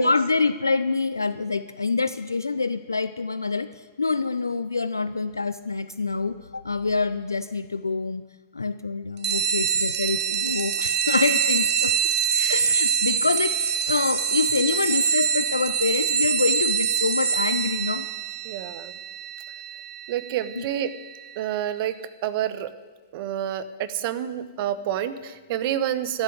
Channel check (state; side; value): inverted; both; correlation -0.55